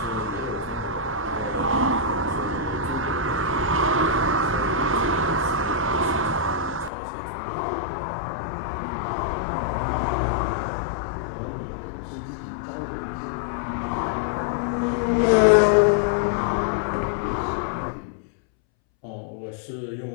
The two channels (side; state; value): right; drops out; at 6.9 s